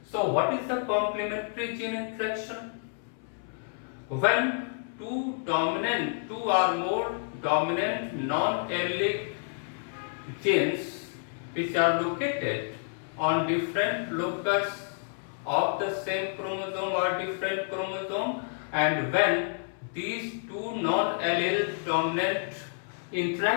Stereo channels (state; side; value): silent; right; 58 dB below the other